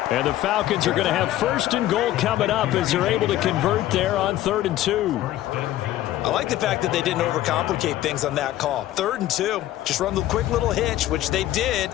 And the Falcons are going to have 1st and goal coming up as they're able to convert there on 3rd and 2. I like the fact that they didn't overcomplicate things on that call. 3rd and 2, just run the quick little hitch, which they did.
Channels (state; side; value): quieter; right; 14.1 dB